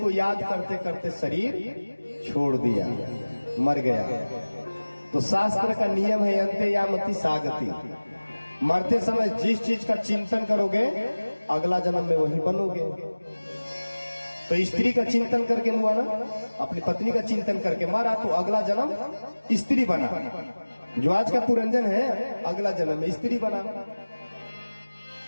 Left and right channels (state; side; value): inverted; both; correlation -1.00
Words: याद करते करते शरीर छोड़ दिया, मर गया। तो शास्त्र का नियम है अंते यामति सागति, मरते समय जिस चीज का चिंतन करोगे अगला जन्म में वही बनोगे। तो स्त्री का चिंतन करके हुआ ना, अपनी पत्नी का चिंतन करके मारा तो अगला जन्म स्त्री बना। जो आज का पुरंजन है अगला जन्म में स्त्री बना।